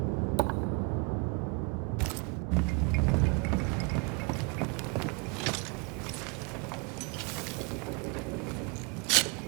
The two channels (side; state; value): left; quieter; 31.7 dB